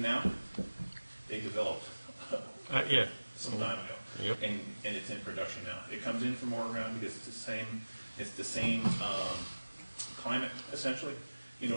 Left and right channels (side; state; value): both; inverted; correlation -1.00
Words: now, they developed Yeah. some time ago, Yep. and it's in production now. It comes in from Oregon because it's the same climate essentially. You